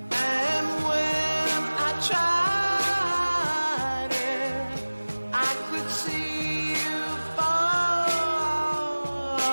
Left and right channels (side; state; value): both; inverted; correlation -1.00